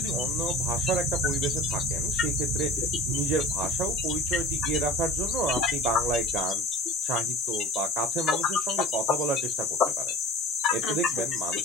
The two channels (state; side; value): normal; both; correlation 0.40